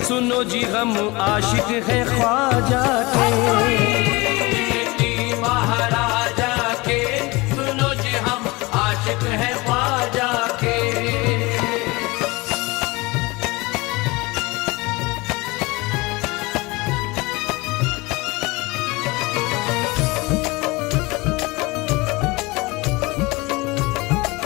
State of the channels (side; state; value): right; quieter; 23.6 dB